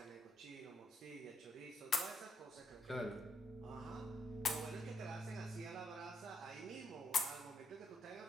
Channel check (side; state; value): both; normal; correlation 0.77